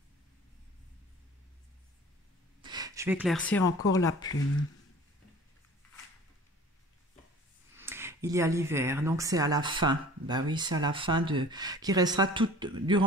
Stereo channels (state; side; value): normal; both; correlation 0.45